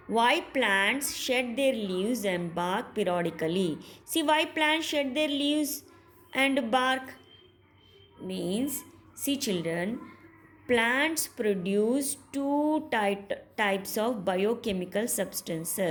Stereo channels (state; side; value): identical; both; correlation 1.00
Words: Why plants shed their leaves and bark periodically? See, why plants shed their leaves and bark? Means, see children, plants produce two types of biochemical